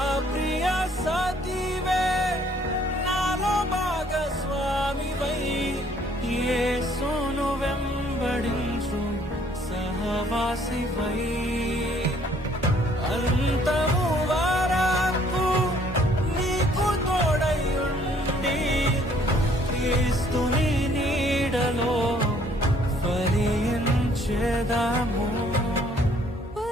ప్రియ సతివే, నాలో భాగస్వామివై, యేసును వెంబడించు సహవాసివై. అంతము వరకు నీకు తోడై ఉండి, క్రీస్తుని నీడలో ఫలించెదము.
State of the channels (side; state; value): both; normal; correlation 0.62